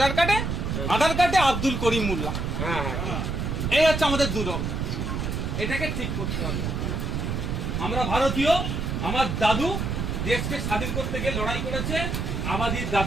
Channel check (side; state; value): right; noise; rumble, 2 dB below the sound